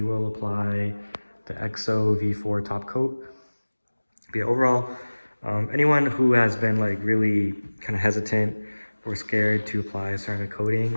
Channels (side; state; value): both; inverted; correlation -1.00